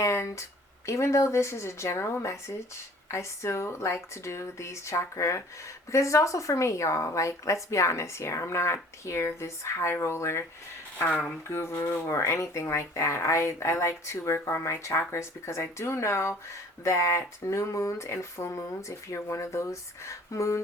even though this is a general message, I still like to do these chakra because it's also for me, y'all. Like, let's be honest here. I'm not here this high roller guru or anything like that. I like to work on my chakras because I do know that new moons and full moons, if you're one of those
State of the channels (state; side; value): normal; both; correlation 0.50